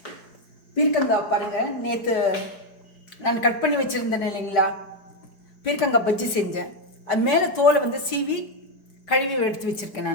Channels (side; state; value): right; late; 4.7 ms